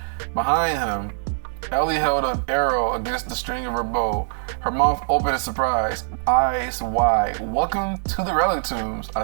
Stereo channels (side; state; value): left; silent; digital silence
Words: Behind him, Ellie held an arrow against the string of her bow, her mouth open in surprise, eyes wide. Welcome to the Relictombs,